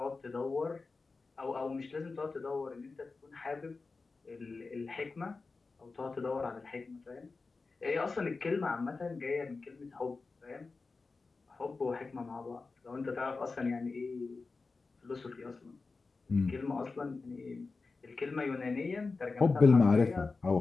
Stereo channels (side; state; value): right; quieter; 4.0 dB